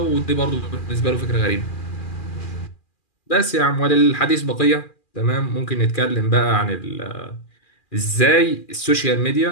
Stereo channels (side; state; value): right; late; 2.4 ms